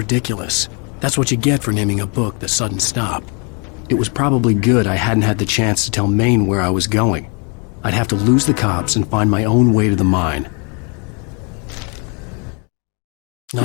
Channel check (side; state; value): right; quieter; 35.3 dB